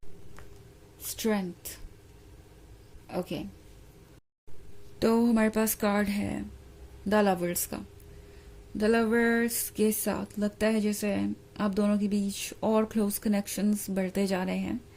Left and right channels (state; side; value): identical; both; correlation 1.00